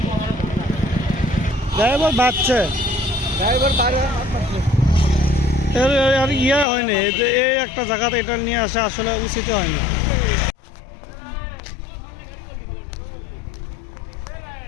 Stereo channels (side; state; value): right; drops out; at 6.7 s